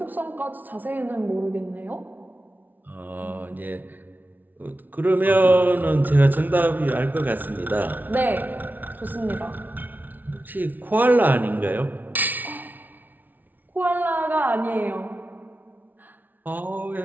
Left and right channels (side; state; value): left; late; 0.083 ms